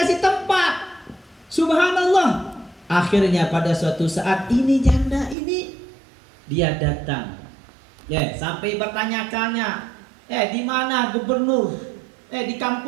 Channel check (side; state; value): left; drops out; at 5.4 s